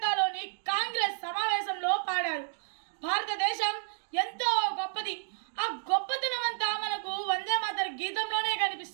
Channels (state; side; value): silent; left; digital silence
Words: కాంగ్రెస్ సమావేశంలో పాడారు. భారతదేశం ఎంతో గొప్పది. ఆ గొప్పతనమంతా మనకు వందే మాతర గీతంలోనే